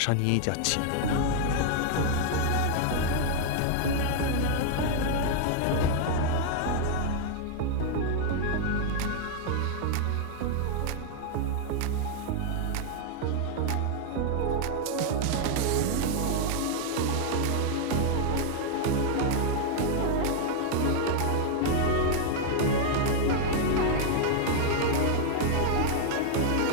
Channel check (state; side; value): different; both; correlation 0.00